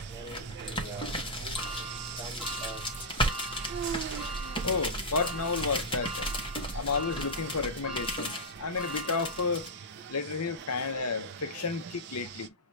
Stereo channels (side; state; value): both; normal; correlation -0.09